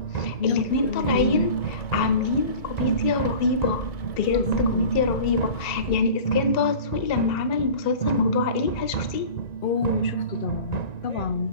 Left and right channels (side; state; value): right; late; 2.7 ms